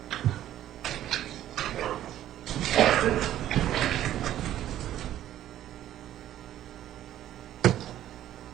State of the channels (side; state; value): left; quieter; 12.4 dB